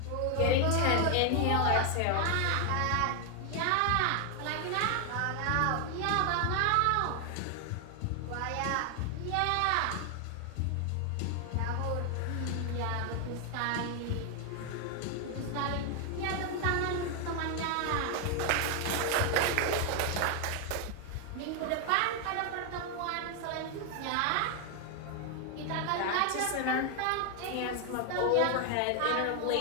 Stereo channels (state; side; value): different; both; correlation 0.01